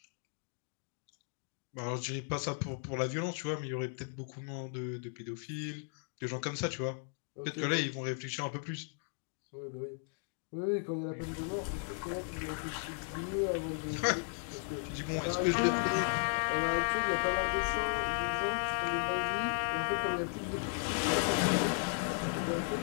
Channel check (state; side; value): silent; right; 54 dB below the other